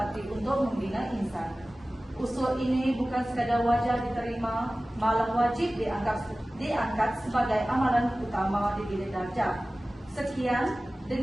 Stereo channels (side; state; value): both; normal; correlation 0.97